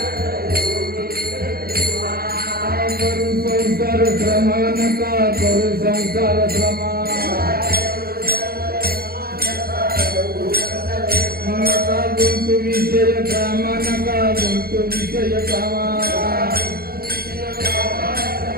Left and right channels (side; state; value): left; late; 0.44 ms